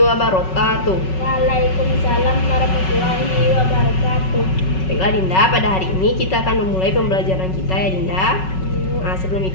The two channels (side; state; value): right; late; 5.4 ms